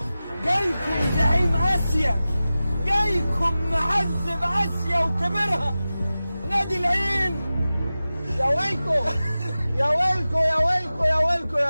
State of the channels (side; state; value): both; inverted; correlation -0.95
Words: جايكم زعيم اسيا، جايكم معذب اسيا وكبرها نادي العين. يا ويلكم يا ويلكم يا ويلكم يا ويلكم